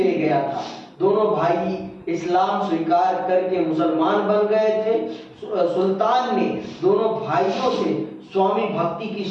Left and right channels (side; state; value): both; identical; correlation 1.00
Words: गया था। दोनों भाई इस्लाम स्वीकार करके मुसलमान बन गए थे। सुल्तान ने दोनों भाइयों से स्वामी भक्ति की